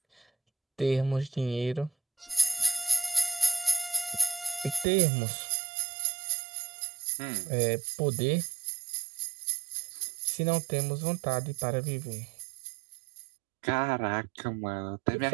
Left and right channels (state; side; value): drops out; left; at 4.9 s